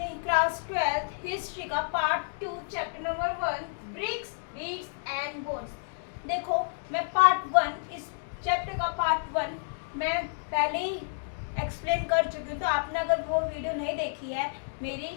क्लास 12th हिस्ट्री का part 2 chapter number 1 bricks beads and bones. देखो, मैं पार्ट 1 इस चैप्टर का पार्ट 1 मैं पहले ही एक्सप्लेन कर चुकी हूँ। तो आपने अगर वो वीडियो नहीं देखी है मेरी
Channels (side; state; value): right; silent; digital silence